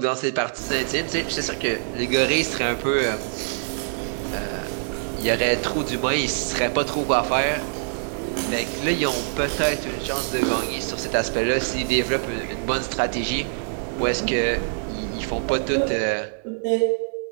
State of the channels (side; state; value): left; silent; 62 dB below the other